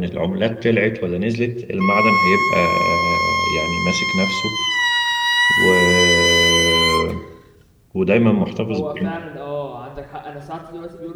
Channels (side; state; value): both; identical; correlation 1.00